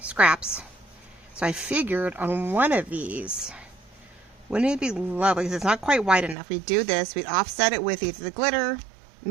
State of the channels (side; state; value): left; drops out; at 6.4 s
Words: scraps. So I figured on one of these, wouldn't it be lovely, because it's not quite wide enough. We'd do this, we'd offset it with either the glitter,